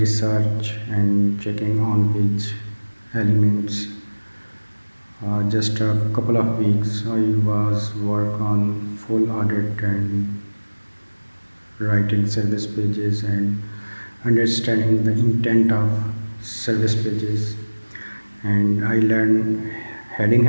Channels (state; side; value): inverted; both; correlation -1.00